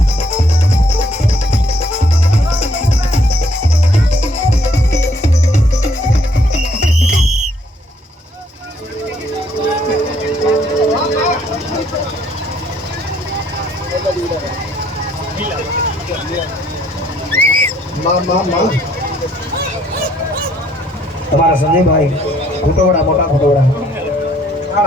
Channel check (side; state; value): both; normal; correlation 0.65